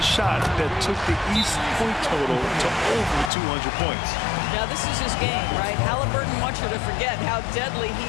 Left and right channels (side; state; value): right; drops out; at 3.3 s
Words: shot that took the East point total to over 200 points. Now, this is his game, right? Halliburton wants you to forget how deadly